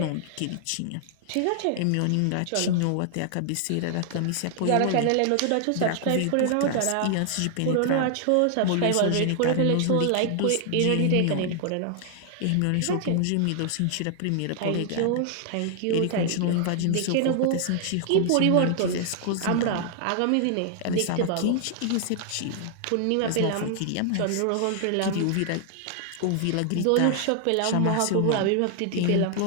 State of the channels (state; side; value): different; both; correlation 0.00